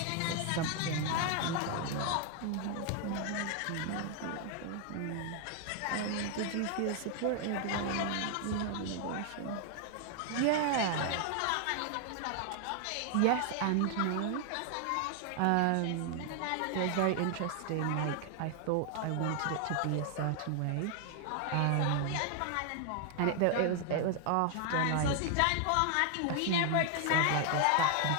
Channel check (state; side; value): different; both; correlation 0.00